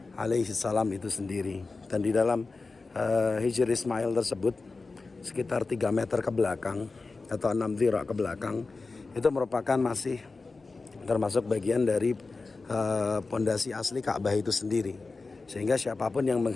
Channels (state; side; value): quieter; right; 3.9 dB